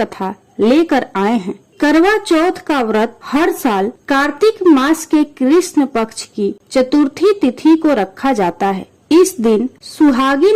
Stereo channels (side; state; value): both; identical; correlation 1.00